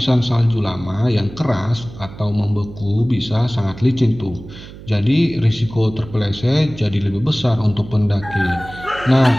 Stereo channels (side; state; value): right; noise; hum, 16 dB below the sound